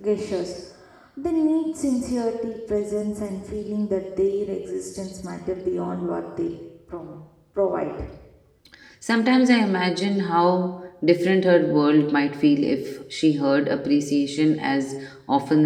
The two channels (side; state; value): both; identical; correlation 1.00